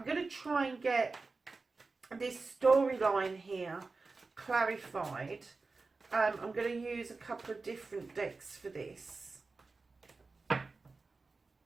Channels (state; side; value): quieter; left; 3.9 dB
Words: going to try and get this storyline here clarified. I'm going to use a couple of different decks for this.